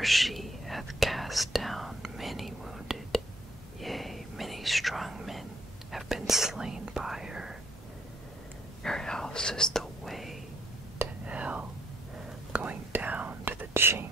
she hath cast down many wounded, yea, many strong men have been slain by her. Her house is the way to hell, going down to the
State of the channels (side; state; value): both; normal; correlation 0.69